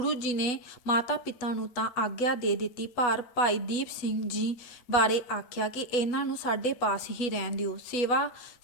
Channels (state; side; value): late; right; 8.2 ms